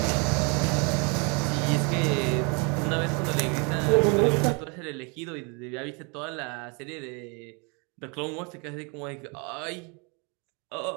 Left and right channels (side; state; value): left; quieter; 32.8 dB